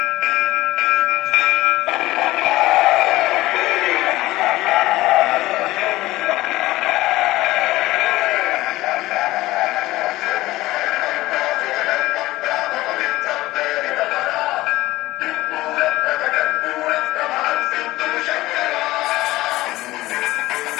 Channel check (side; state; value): right; quieter; 17.7 dB